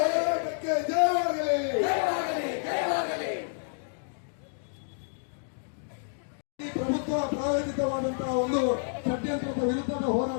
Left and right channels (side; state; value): right; silent; digital silence